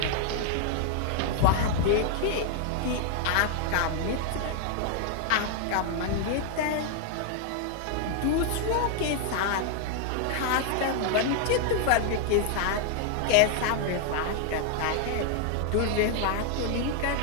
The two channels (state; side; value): different; both; correlation 0.00